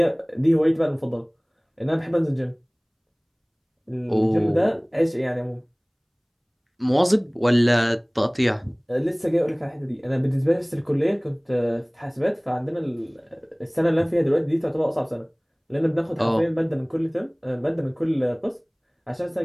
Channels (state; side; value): identical; both; correlation 1.00